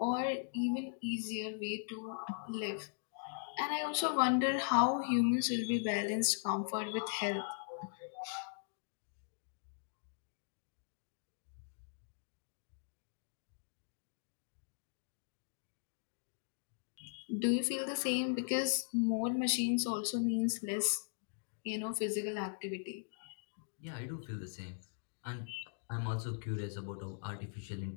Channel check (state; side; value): silent; right; digital silence